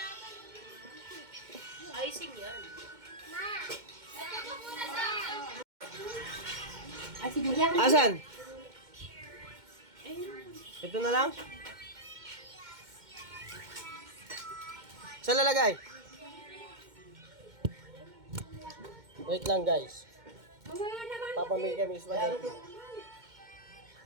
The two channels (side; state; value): left; late; 2.1 ms